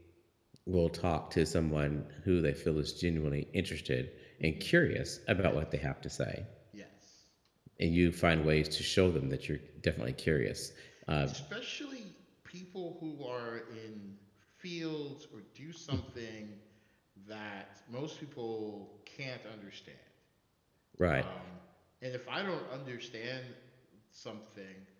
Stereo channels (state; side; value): identical; both; correlation 1.00